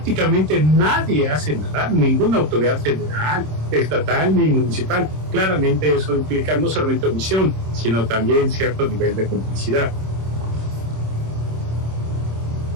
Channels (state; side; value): late; left; 26 ms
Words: nadie hace nada, ninguna autoridad federal, estatal ni municipal, claramente eso implica no solamente omisión, sino también cierto nivel de complicidad.